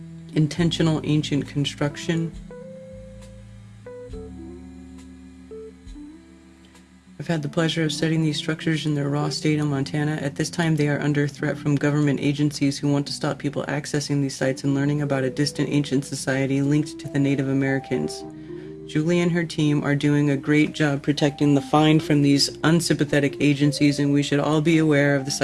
Intentional ancient construction. I've had the pleasure of studying these structures in their raw state in Montana. At this time, they are under threat from government agencies who want to stop people accessing these sites and learning about a distant ancient society linked to the Native Americans. Julie and her team are doing a great job protecting the find from these unsympathetic agencies, and we should all be aware of the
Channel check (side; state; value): both; identical; correlation 1.00